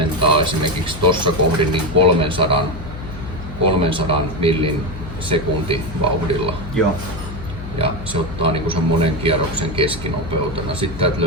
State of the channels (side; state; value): left; noise; hum, 10 dB below the sound